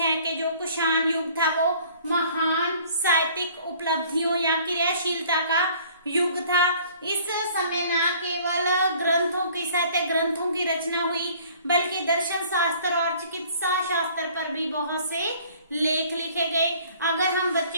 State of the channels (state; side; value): inverted; both; correlation -0.54